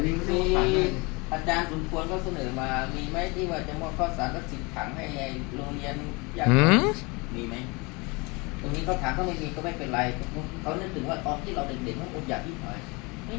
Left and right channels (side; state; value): right; quieter; 27.5 dB